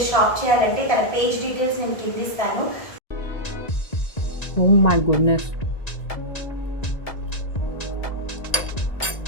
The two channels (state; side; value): late; right; 1.9 ms